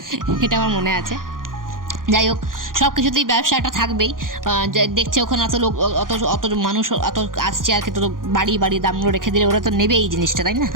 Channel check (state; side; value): late; left; 0.90 ms